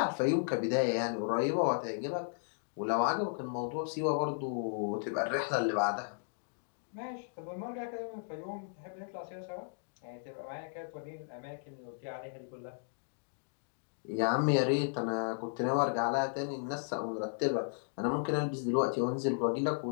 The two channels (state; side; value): silent; right; digital silence